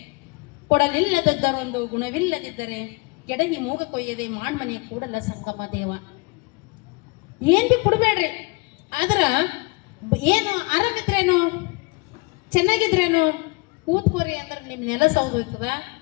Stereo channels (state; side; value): quieter; right; 26.7 dB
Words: ಕೊಡಲಿಲ್ಲದದ್ದರೊಂದು ಗುಣವಿಲ್ಲದಿದ್ದರೆ ಕೆಡಹಿ ಮೂಗ ಕೊಯ್ಯದೆ ಮಾಣ್ಮನೆ ಕೂಡಲ ಸಂಗಮ ದೇವ. ಏನ್ ಬಿ ಕೊಡ್ಬೇಡ್ರಿ, ಆದ್ರ ಏನು ಆರಾಮಿದ್ರೇನು, ಚೆನ್ನಾಗಿದ್ರೇನು, ಕೂತ್ಕೋರಿ ಅಂದ್ರೆ ನಿಮ್ ನೆಲ ಸೌದೋಯ್ತದ,